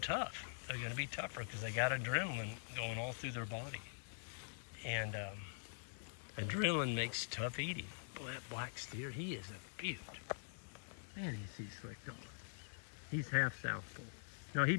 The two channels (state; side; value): silent; right; digital silence